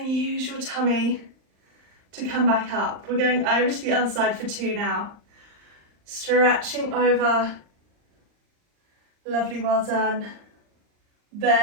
use your tummy to come back up. We're going over to the other side for 2 now. Stretching over. Lovely, well done.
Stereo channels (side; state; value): left; late; 39 ms